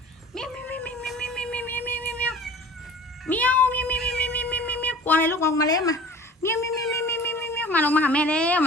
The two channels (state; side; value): normal; both; correlation 0.43